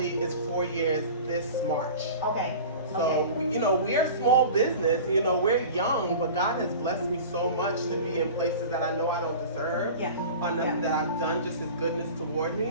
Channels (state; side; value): inverted; both; correlation -0.37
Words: is 4 years this March. Okay. So, we're a small business, we're young, but God has blessed me so much to be in places that I know I don't deserve. Yeah. Or nothing that I've done, just His goodness toward